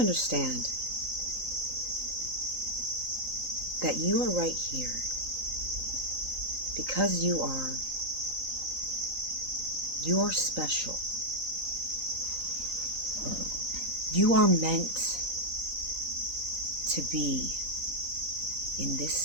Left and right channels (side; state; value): left; late; 3.9 ms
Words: that you are right here because you are special. You are meant to be in this